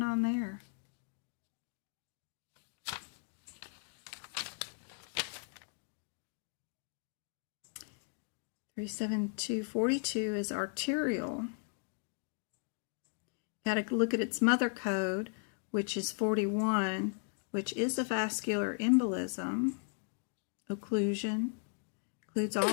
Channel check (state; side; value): silent; right; 53 dB below the other